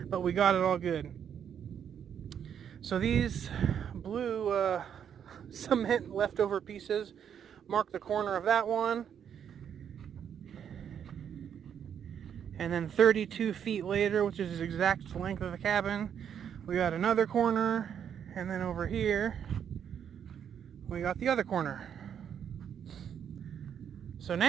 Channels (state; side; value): quieter; left; 8.4 dB